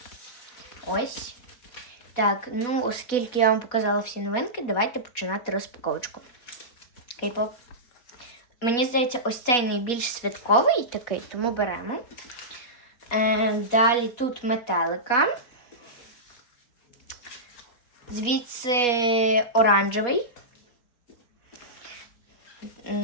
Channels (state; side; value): late; right; 4.2 ms